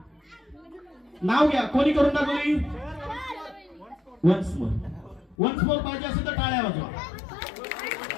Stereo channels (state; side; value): drops out; right; at 5.4 s